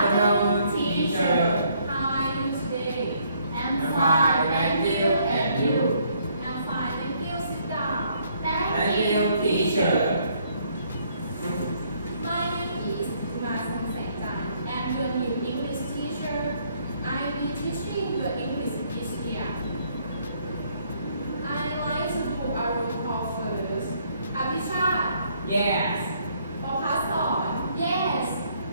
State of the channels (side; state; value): both; inverted; correlation -0.67